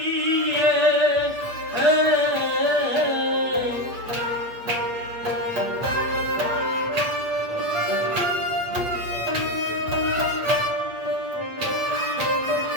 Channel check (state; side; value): late; left; 8.6 ms